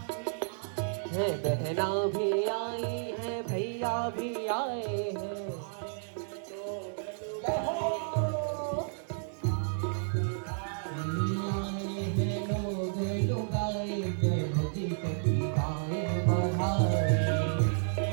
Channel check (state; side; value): silent; left; digital silence